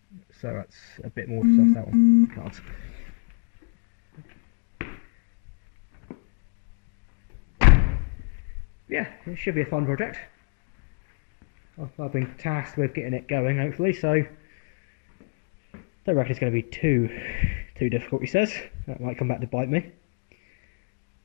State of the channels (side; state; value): right; quieter; 39.9 dB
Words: so that's a bit more to suss out on cards. Yeah, it should be a fun project. I've been tasked with getting it going, hopefully, so don't reckon it's going to be too difficult, he says. That might come back to bite me.